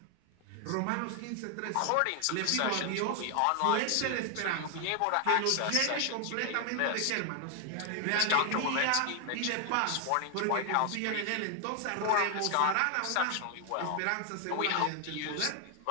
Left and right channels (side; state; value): both; different; correlation 0.00